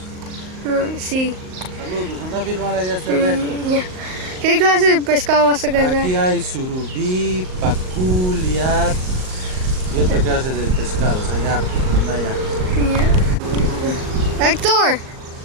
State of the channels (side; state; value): left; late; 38 ms